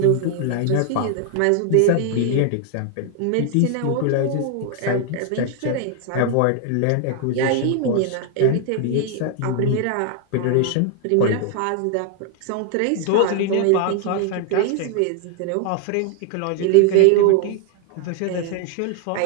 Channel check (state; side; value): different; both; correlation 0.00